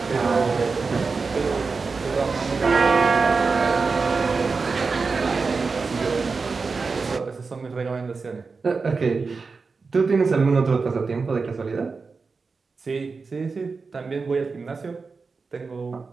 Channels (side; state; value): left; quieter; 4.5 dB